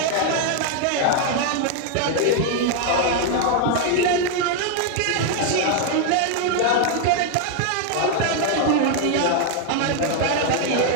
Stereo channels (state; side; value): different; both; correlation 0.00